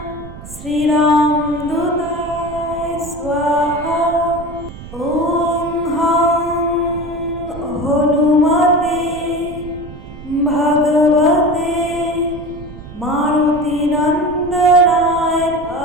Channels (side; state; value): right; noise; rumble, 15 dB below the sound